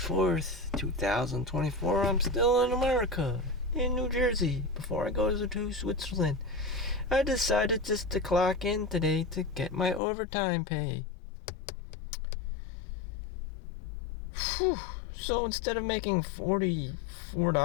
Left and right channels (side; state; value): right; drops out; at 10.0 s